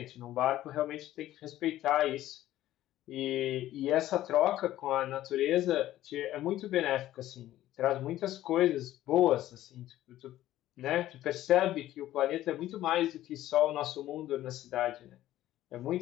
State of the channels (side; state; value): right; quieter; 14.0 dB